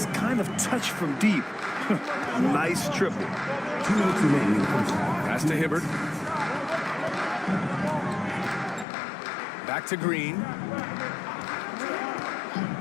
kind of touch from deep. Nice triple. Pass to Hibbert. Back to Green.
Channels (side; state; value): right; drops out; at 8.8 s